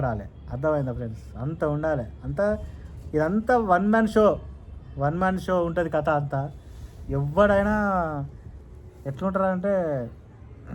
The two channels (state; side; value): identical; both; correlation 1.00